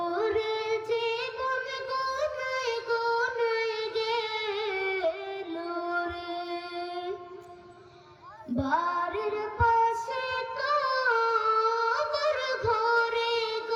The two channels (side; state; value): both; identical; correlation 1.00